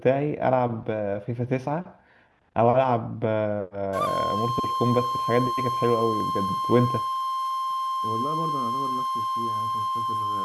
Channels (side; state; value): both; identical; correlation 1.00